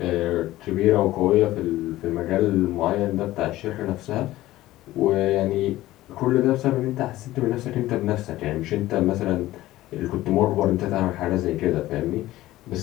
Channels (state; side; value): quieter; right; 16.1 dB